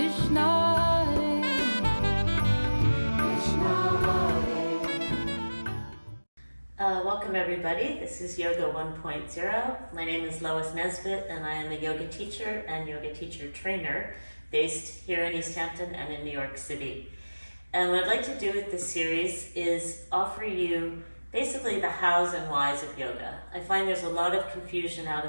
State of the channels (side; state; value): both; inverted; correlation -1.00